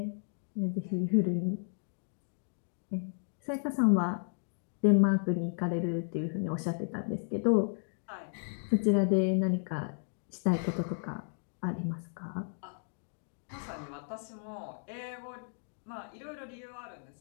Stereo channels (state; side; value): silent; right; digital silence